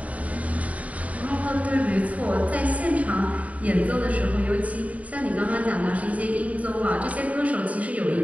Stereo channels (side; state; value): left; late; 0.069 ms